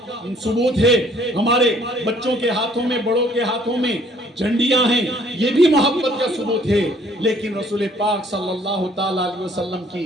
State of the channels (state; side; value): normal; both; correlation 0.60